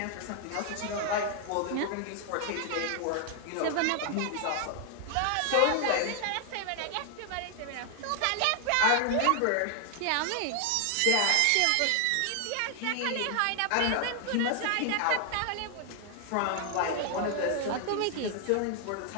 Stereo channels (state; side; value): different; both; correlation 0.00